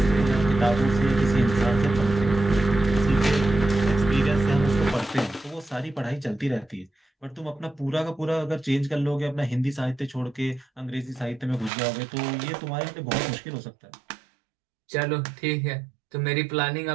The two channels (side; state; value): left; drops out; at 11.7 s